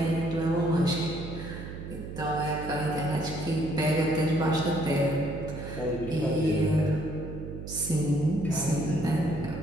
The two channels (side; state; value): right; noise; hum, 9 dB below the sound